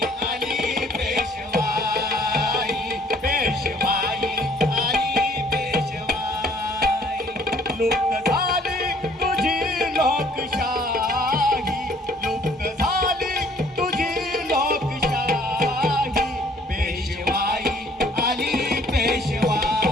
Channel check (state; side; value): normal; both; correlation 0.59